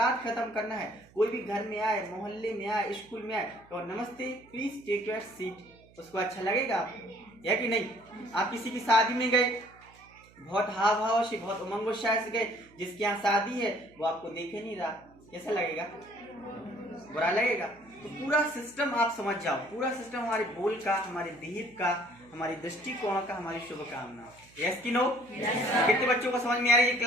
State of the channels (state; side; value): noise; right; hum, 27 dB below the sound